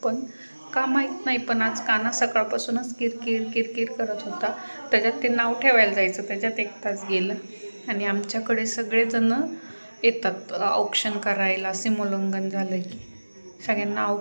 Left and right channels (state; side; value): inverted; both; correlation -1.00